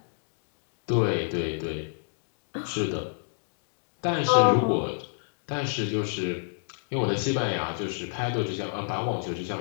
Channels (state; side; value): silent; right; digital silence